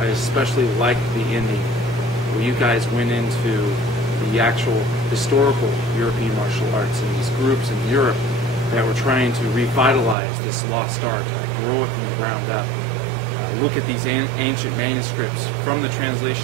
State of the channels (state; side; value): drops out; left; at 10.2 s